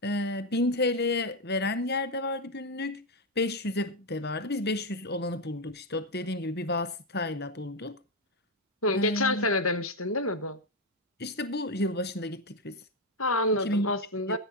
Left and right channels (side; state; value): both; normal; correlation 0.06